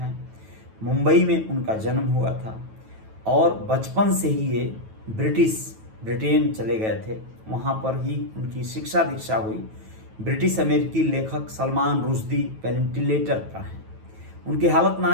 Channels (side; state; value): left; late; 9.2 ms